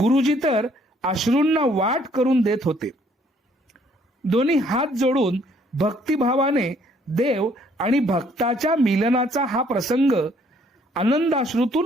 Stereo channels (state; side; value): normal; both; correlation 0.64